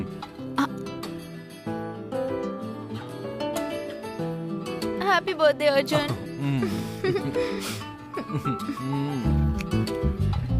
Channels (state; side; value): identical; both; correlation 1.00